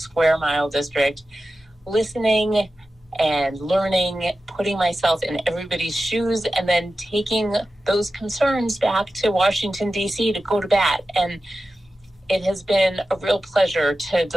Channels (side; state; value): both; normal; correlation 0.93